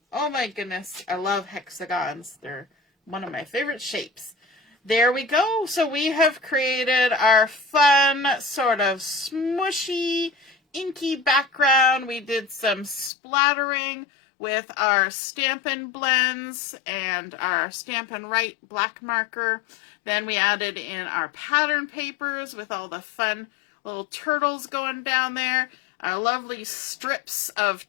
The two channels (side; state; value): right; drops out; at 13.1 s